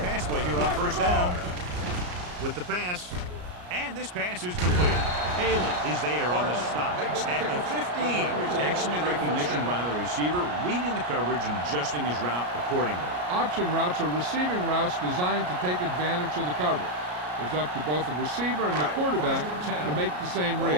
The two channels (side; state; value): left; late; 33 ms